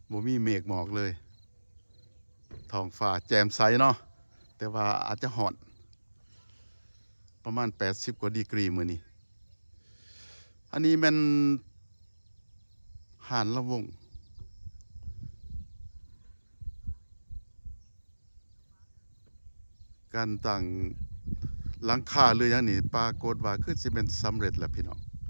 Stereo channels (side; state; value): both; inverted; correlation -1.00